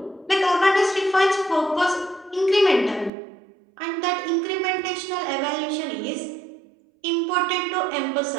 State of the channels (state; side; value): drops out; left; at 3.1 s